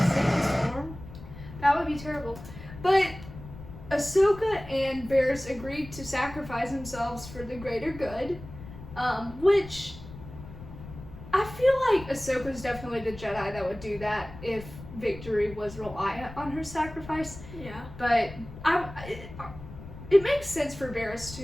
sandstorm. That would be terrible. But Ahsoka and Barriss agreed to sacrifice themselves for the greater good, which I feel like Ahsoka's definitely the Jedi that would do that if victory was reliant on her sacrifice. Yeah. But it makes sense for Barriss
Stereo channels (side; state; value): left; noise; rumble, 14 dB below the sound